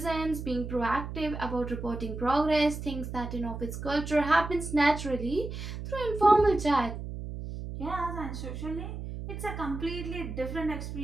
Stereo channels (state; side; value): noise; right; hum, 7 dB below the sound